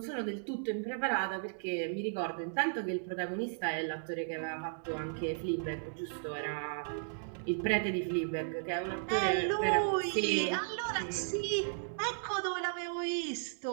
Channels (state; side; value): silent; left; 54 dB below the other